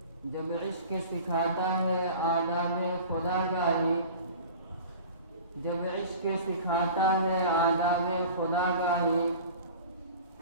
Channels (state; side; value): inverted; both; correlation -0.40